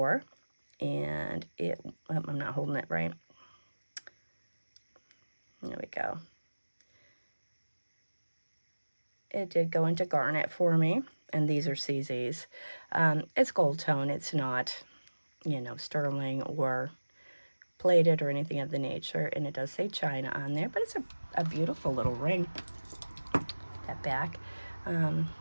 and I'm not holding it right. There we go. It did go into garnet for me, and these are CZs. It's gold tone. It's not, you know, sterling or plated or anything of the nature, and it does say China on there, but it's a beautiful little ring. That back,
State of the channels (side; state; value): both; inverted; correlation -1.00